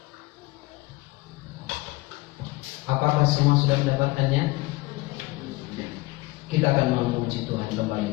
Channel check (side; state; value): right; quieter; 21.4 dB